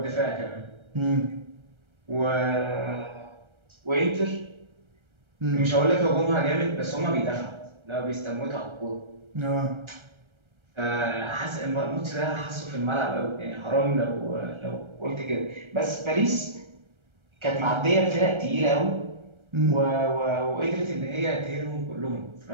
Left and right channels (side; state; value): left; late; 1.3 ms